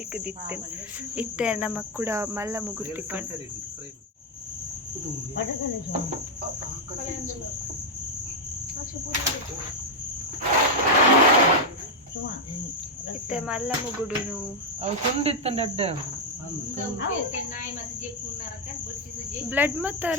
Itte namak kuda malla mugur tikkandu. ಇತ್ತೆ ಮಲ್ಲ ಮುಗುಡುನು ಅವು ತುಂಡಿತ್ತಂಡ ಅಡ್ಡ blood ಮತ್ತ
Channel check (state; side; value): normal; both; correlation 0.00